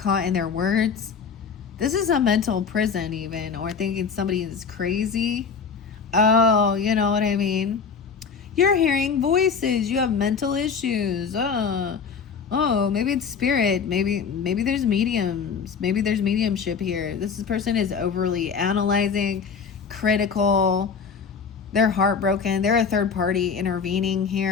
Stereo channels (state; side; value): quieter; right; 6.0 dB